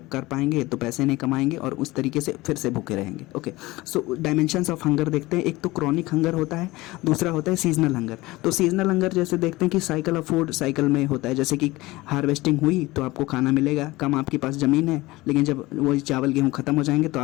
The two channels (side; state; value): right; quieter; 20.1 dB